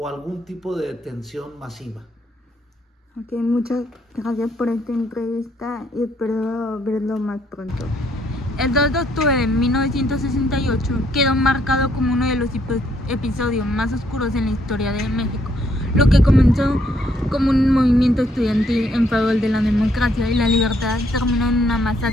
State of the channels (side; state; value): both; normal; correlation 0.70